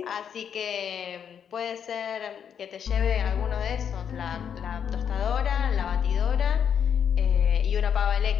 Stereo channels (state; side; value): quieter; right; 8.0 dB